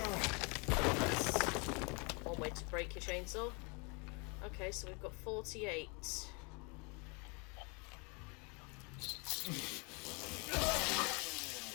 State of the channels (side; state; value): right; quieter; 32.1 dB